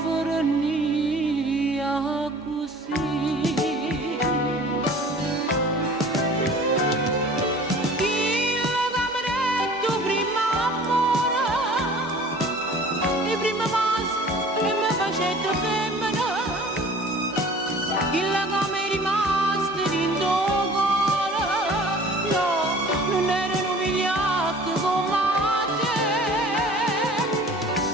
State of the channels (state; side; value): normal; both; correlation 0.47